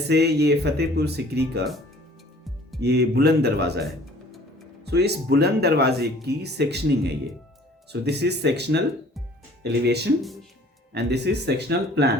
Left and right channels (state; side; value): normal; both; correlation 0.52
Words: ये फतेहपुर सिकरी का ये बुलंद दरवाज़ा है, सो इस बुलंद दरवाजे की सेक्शनिंग है ये। So this is sectional elevation and this is sectional